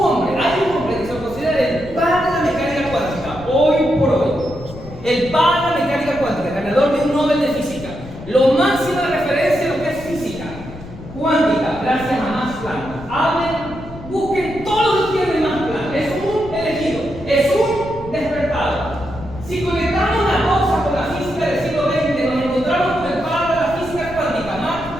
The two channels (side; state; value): left; noise; rumble, 14 dB below the sound